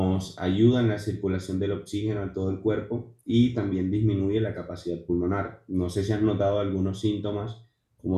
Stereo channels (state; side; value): identical; both; correlation 1.00